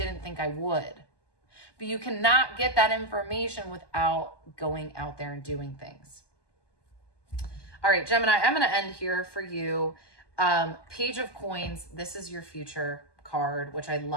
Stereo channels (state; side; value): late; right; 1.2 ms